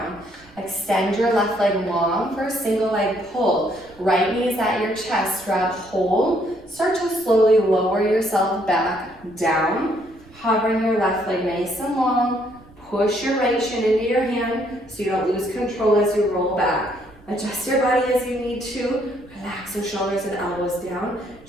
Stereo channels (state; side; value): noise; right; rumble, 25 dB below the sound